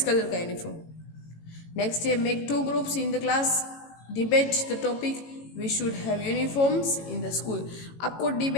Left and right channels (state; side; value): late; right; 18 ms